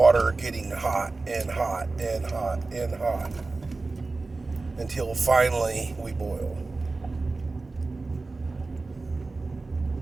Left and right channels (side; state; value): left; quieter; 3.6 dB